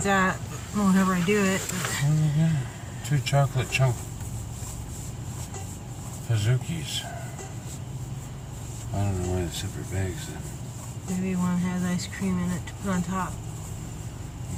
at whenever I do it. But 2 chocolate chunk Pazookies. I don't know why the separate bags then. Maybe one has ice cream in it to put on top.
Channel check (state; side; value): identical; both; correlation 1.00